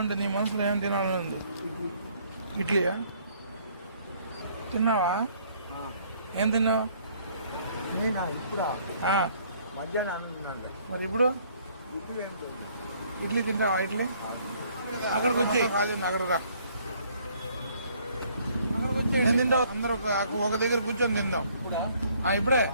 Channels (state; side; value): inverted; both; correlation -0.62